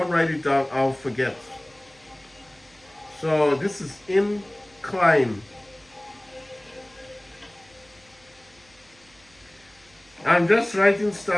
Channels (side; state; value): right; noise; hum, 29 dB below the sound